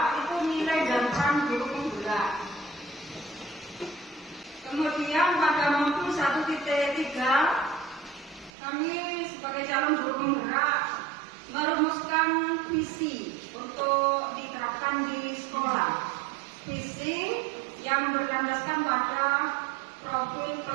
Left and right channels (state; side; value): drops out; left; at 8.5 s